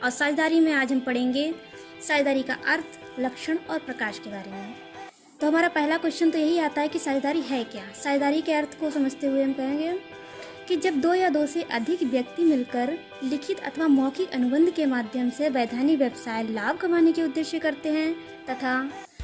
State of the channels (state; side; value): identical; both; correlation 1.00